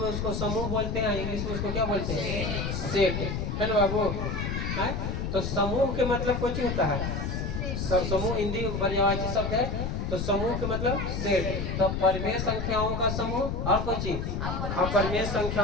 उसको समूह बोलते हैं, इंग्लिश में उसको क्या बोलते हैं, सेट, है ना बाबू। तो समूह के मतलब कुछ होता है, समूह हिंदी पर्यायवाची शब्द है। तो समूह के मतलब सेट। तो परिमेय संख्याओं का समूह और कुछ अपरिमेय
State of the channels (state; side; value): noise; left; rumble, 2 dB below the sound